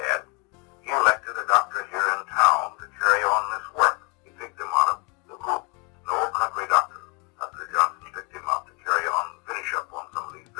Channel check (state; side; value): quieter; right; 29.0 dB